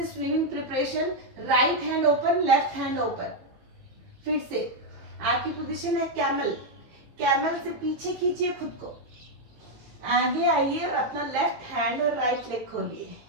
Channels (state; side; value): late; left; 18 ms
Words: swimming preparation, right hand open, left hand open. फिर से आपकी पोजीशन है कैमल, कैमल से पीछे खींचिए खुद को, आगे आइए और अपना लेफ्ट हैंड और राइट लेग खोलिए।